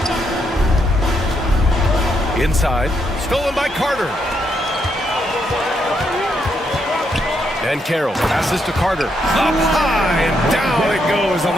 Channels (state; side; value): normal; both; correlation 0.78